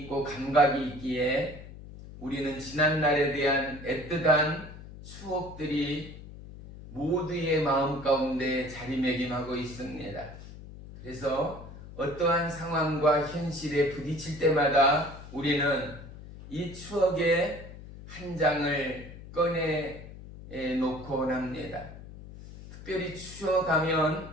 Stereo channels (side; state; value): left; noise; hum, 15 dB below the sound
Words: 감각이 있기에 우리는 지난날에 대한 애틋한 추억들이 모두의 마음 가운데 자리매김하고 있습니다. 그래서 어떠한 상황과 현실에 부딪힐 때마다 우리는 이 추억의 한 장을 꺼내 놓곤 합니다. 특별히